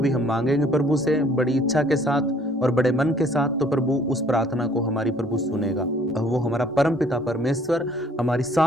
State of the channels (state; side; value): normal; both; correlation 0.58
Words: हम मांगेंगे प्रभु से बड़ी इच्छा के साथ और बड़े मन के साथ, तो प्रभु उस प्रार्थना को हमारी प्रभु सुनेगा। वो हमारा परम पिता परमेश्वर हमारी